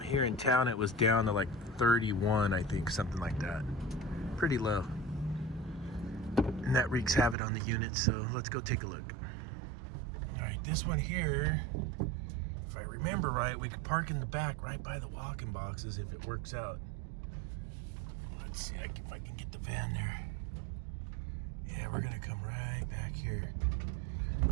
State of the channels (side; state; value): left; drops out; at 7.4 s